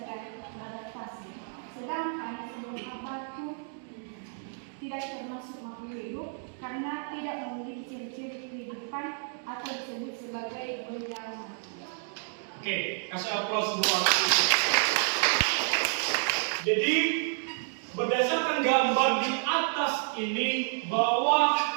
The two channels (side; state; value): left; silent; 58 dB below the other